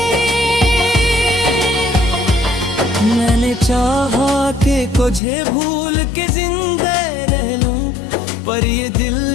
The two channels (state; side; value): drops out; right; at 5.2 s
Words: मैंने चाहा कि तुझे भूल के जिंदा रह लूं, पर ये दिल